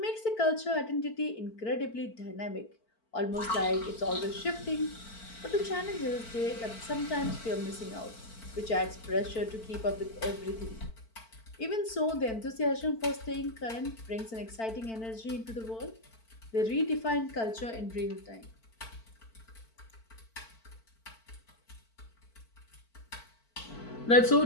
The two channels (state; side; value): late; right; 4.5 ms